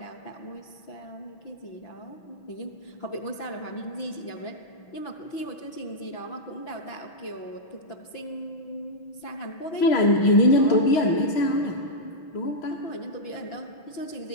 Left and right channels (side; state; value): right; late; 6.1 ms